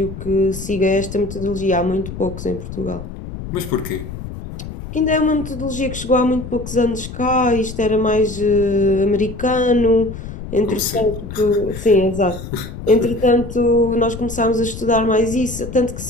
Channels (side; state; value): left; noise; rumble, 10 dB below the sound